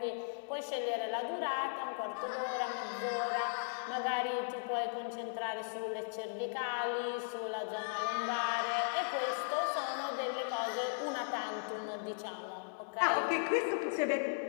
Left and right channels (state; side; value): silent; right; digital silence